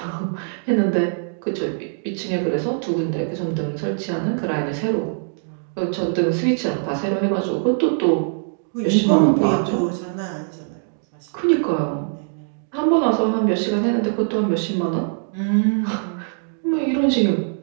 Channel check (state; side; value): silent; left; digital silence